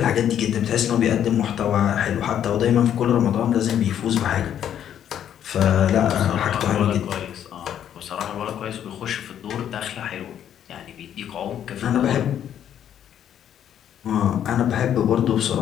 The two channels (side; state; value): right; quieter; 9.9 dB